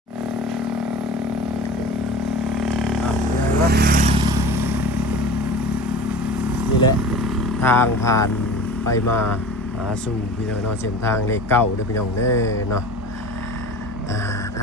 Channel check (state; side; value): normal; both; correlation 0.36